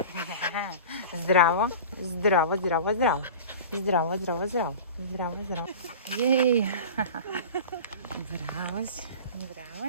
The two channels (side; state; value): both; inverted; correlation -0.35